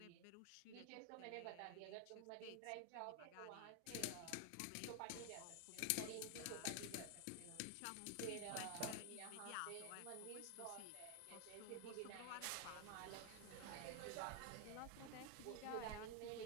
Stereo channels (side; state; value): both; different; correlation 0.01